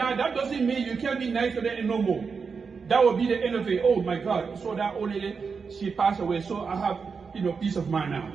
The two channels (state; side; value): quieter; left; 5.4 dB